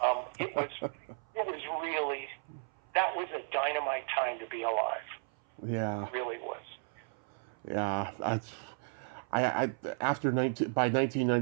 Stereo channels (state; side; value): silent; left; 55 dB below the other